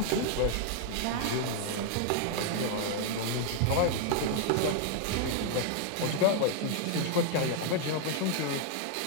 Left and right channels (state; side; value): different; both; correlation 0.00